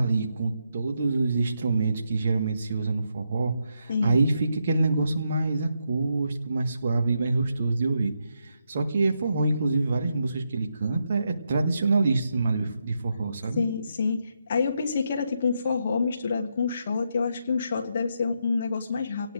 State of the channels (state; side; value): inverted; both; correlation -0.81